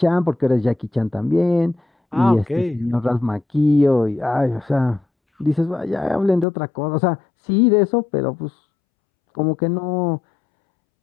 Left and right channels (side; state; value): right; drops out; at 6.5 s